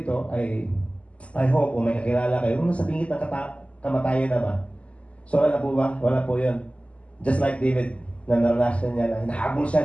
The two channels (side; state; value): right; late; 0.061 ms